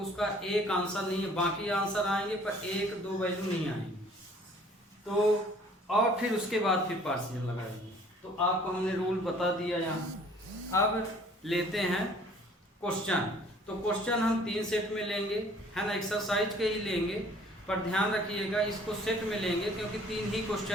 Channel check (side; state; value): both; normal; correlation 0.55